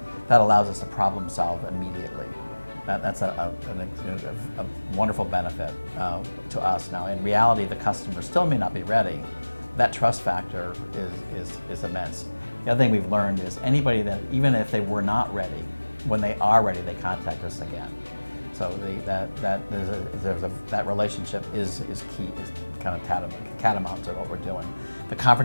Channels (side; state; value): both; inverted; correlation -1.00